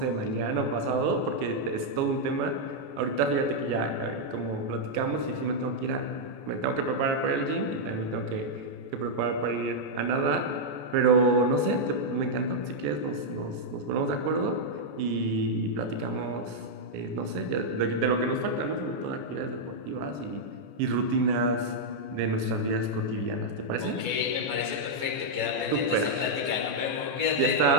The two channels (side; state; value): left; late; 14 ms